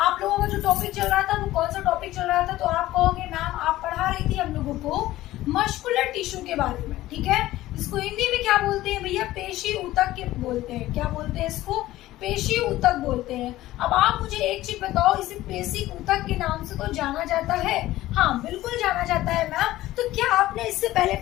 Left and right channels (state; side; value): quieter; right; 15.9 dB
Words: लोगों का जो टॉपिक चल रहा था वो कौन सा टॉपिक चल रहा था, तो आप कहोगे मैम आप पढ़ा रही थी हम लोगों को मस्कुलर टिश्यू के बारे में, ठीक है। इसको हिंदी में क्या बोलते हैं भैया, पेशी ऊतक के बोलते हैं। क्या बोलते हैं इसको, पेशी ऊतक बोलते हैं। अब आप मुझे एक चीज बताओ, इसे पेशी ऊतक के नाम से तो जाना जाता है? हाँ बिल्कुल जाना जाता है मैम। तो क्या आपने इससे पहले